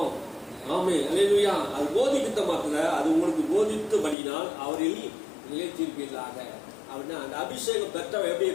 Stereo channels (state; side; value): drops out; right; at 4.2 s